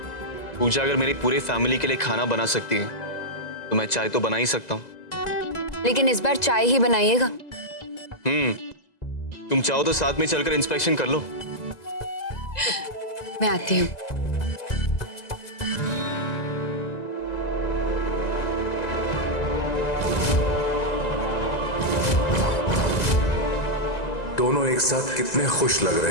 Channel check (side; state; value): right; late; 2.0 ms